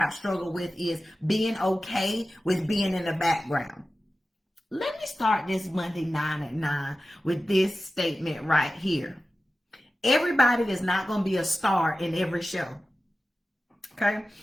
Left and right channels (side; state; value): both; normal; correlation 0.95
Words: struggled with, is being okay with being in the background. Let me start this Monday 9 at 9 with this statement right here. Everybody is not going to be a star in every show. Okay?